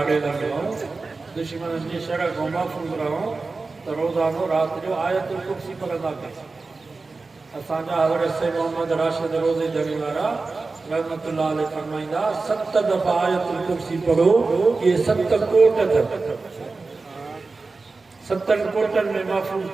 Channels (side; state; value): left; quieter; 3.9 dB